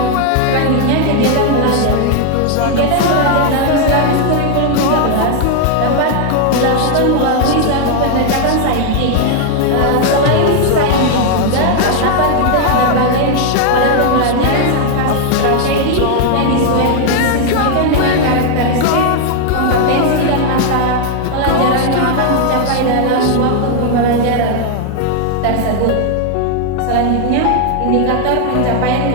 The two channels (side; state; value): both; different; correlation 0.00